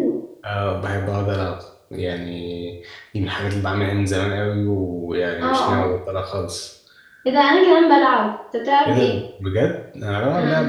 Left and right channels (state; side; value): identical; both; correlation 1.00